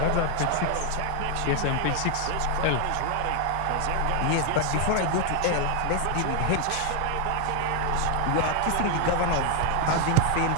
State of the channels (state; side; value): different; both; correlation 0.00